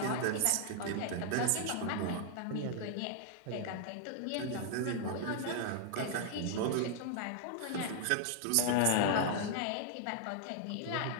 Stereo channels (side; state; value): both; different; correlation -0.01